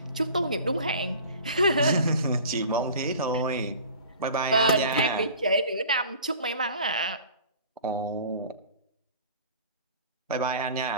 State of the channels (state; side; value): inverted; both; correlation -0.43